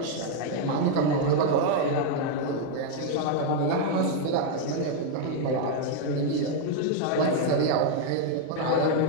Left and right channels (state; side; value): different; both; correlation 0.00